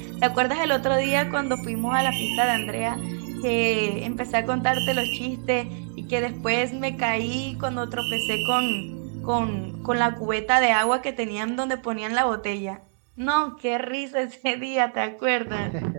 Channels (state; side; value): silent; left; 61 dB below the other